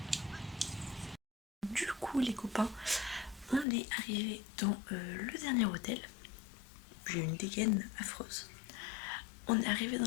Du coup les copains, on est arrivé dans le dernier hôtel. J'ai une dégaine affreuse. On est arrivé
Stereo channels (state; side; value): drops out; right; at 3.7 s